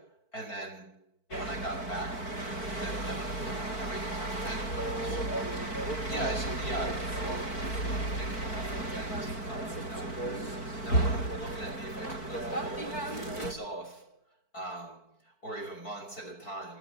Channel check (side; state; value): right; late; 4.5 ms